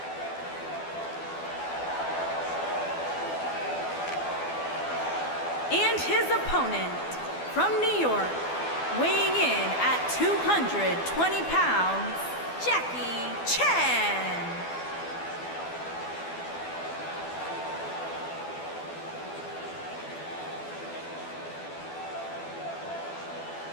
And his opponent from New York, weighing in at 220 pounds, Jackie Chan.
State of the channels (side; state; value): right; late; 12 ms